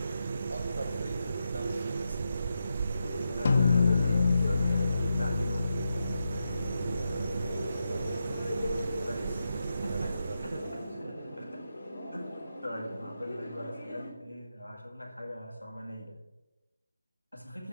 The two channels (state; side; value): inverted; both; correlation -0.87